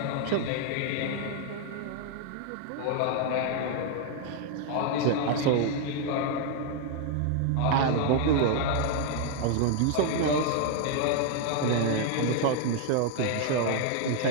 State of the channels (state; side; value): different; both; correlation 0.00